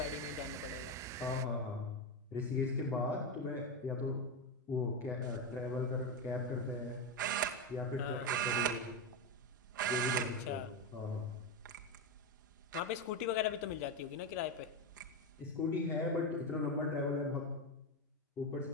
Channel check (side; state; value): both; normal; correlation 0.12